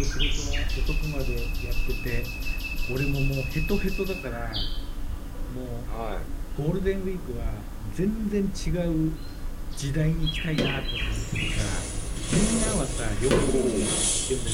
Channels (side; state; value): both; identical; correlation 1.00